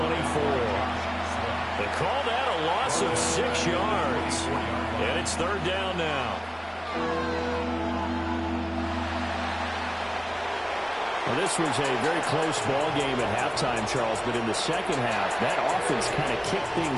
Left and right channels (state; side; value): identical; both; correlation 1.00